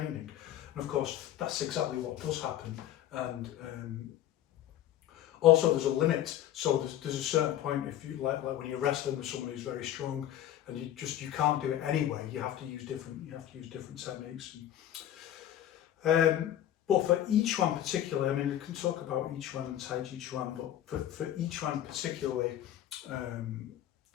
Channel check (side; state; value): right; quieter; 12.0 dB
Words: And of course, that's exactly what does happen. And also there's a limit. So there's a certain point, if you like when you're wrestling with someone who's very strong, and you can't do it anyway. You have to use different techniques. But for each one particularly, we can talk about each one and taijiquan, but for each one particularly,